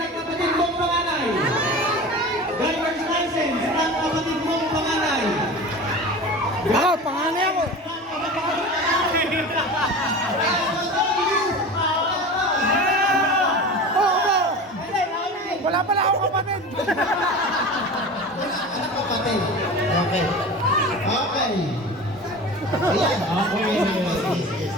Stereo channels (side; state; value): both; normal; correlation 0.33